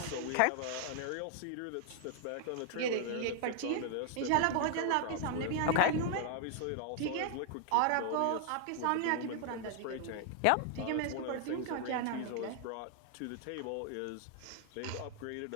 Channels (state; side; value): different; both; correlation 0.00